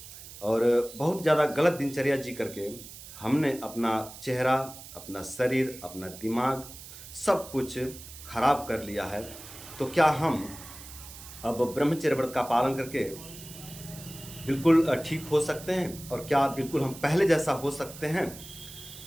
और बहुत ज़्यादा गलत दिनचर्या जी करके हमने अपना चेहरा, अपना शरीर, अपना दिमाग सब कुछ खराब कर लिया है। तो क्या हम अब ब्रह्मचर्य व्रत का पालन करके बिल्कुल ठीक हो सकते हैं और क्या बिल्कुल हम पहले जैसा हो सकते हैं?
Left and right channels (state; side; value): noise; right; hiss, 15 dB below the sound